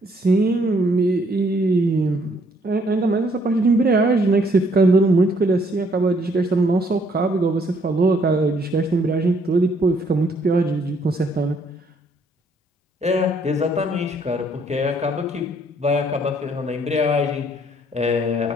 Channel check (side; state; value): both; normal; correlation 0.66